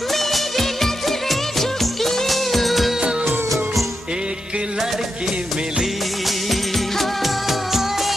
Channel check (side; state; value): both; normal; correlation 0.86